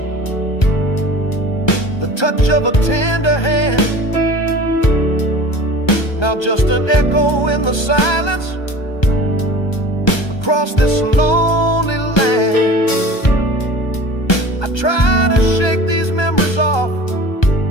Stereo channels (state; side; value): late; right; 1.3 ms